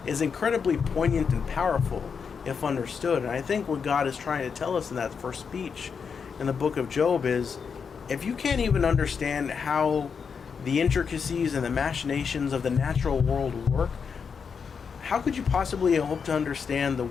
is incredibly poignant and powerful if understood. And I think what God is trying to tell us in that first speech in the book of Job is, if you can't even understand how the intricacies and the machinations of the natural world work, how could you possibly hope to understand the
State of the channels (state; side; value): quieter; right; 6.1 dB